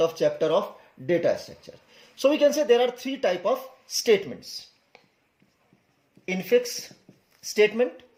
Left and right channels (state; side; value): identical; both; correlation 1.00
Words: chapter of data structure. So we can say there are three types of statements. Infix statement,